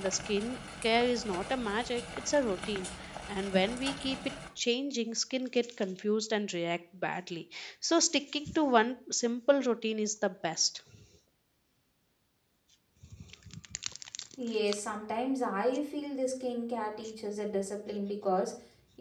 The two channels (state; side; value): identical; both; correlation 1.00